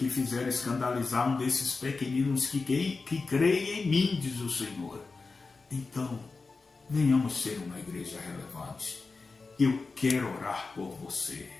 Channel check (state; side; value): quieter; right; 4.1 dB